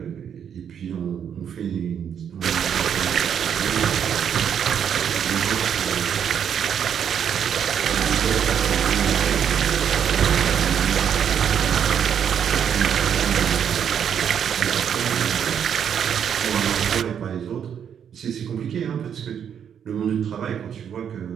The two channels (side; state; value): left; quieter; 8.3 dB